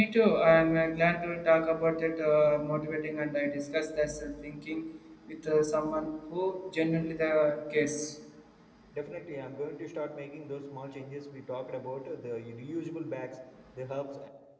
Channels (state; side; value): identical; both; correlation 1.00